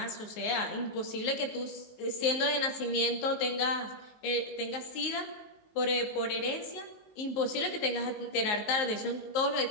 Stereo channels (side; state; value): right; late; 19 ms